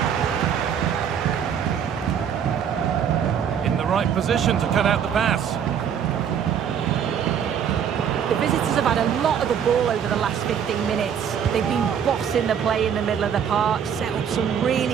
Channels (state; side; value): quieter; left; 8.2 dB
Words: In the right position to cut out the pass. The visitors have had a lot of the ball over the last 15 minutes. They've been bossing the play in the middle of the park, set up some